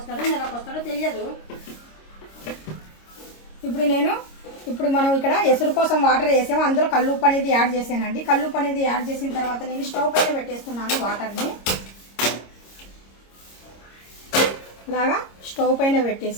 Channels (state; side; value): late; right; 26 ms